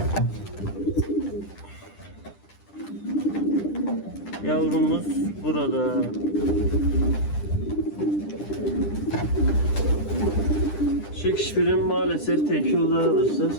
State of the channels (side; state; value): right; late; 10 ms